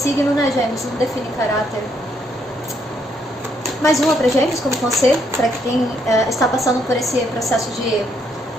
né, Gêmeos, não define caráter. Mais uma para Gêmeos, como conselho, para quem está passando por esse processo de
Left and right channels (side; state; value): both; normal; correlation 0.72